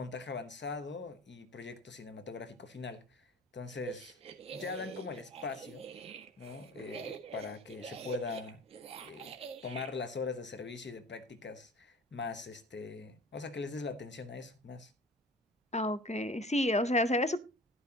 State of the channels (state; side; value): normal; both; correlation 0.42